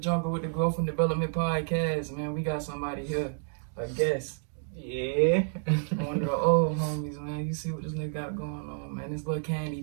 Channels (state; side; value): silent; left; digital silence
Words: with the Growth and Development Podcast, man. We got somebody here, a guest. Yeah. One of the old homies, man. You see what this nigga got going on, man. This little candy